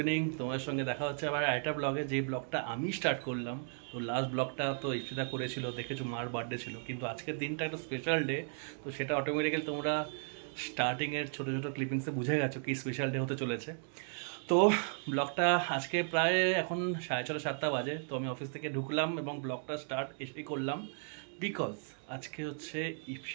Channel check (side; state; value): left; silent; 54 dB below the other